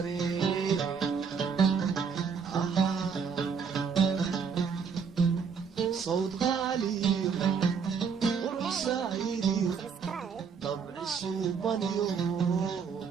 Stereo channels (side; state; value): left; quieter; 6.1 dB